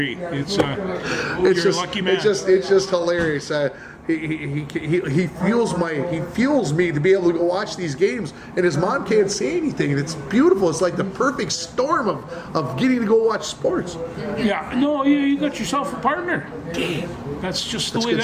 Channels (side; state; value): both; identical; correlation 1.00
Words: You're a lucky man. It's just hilarious. He fuels me to be able to go watch these games, and his mom can't say anything, and it's beautiful. It's like the perfect storm of getting to go watch sports. Yeah, no, you got yourself a partner. That's just the way